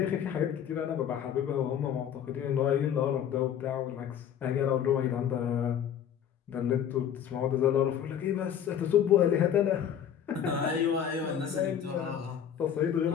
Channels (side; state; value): right; quieter; 9.1 dB